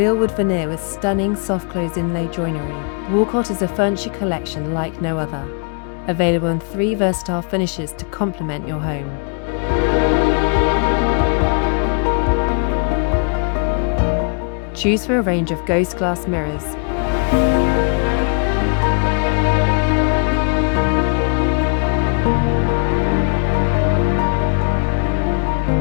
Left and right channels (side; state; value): right; quieter; 39.4 dB